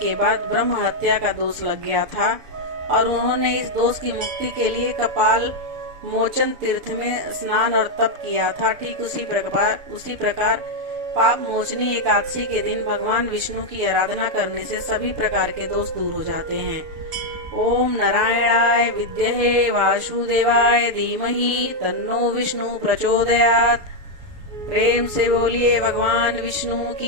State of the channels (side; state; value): left; late; 6.6 ms